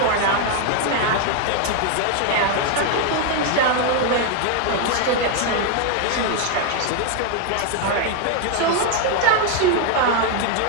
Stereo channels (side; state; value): both; different; correlation 0.01